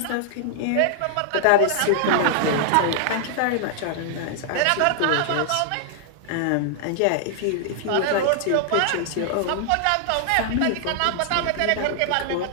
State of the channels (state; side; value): different; both; correlation -0.01